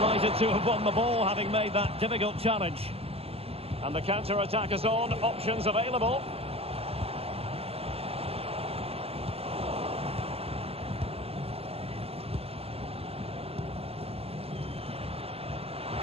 to have won the ball, having made that difficult challenge. And the counter-attack is on, options available.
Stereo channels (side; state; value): left; late; 0.29 ms